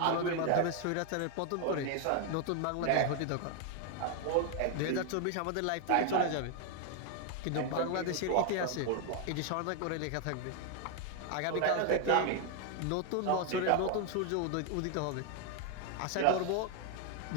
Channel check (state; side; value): different; both; correlation 0.00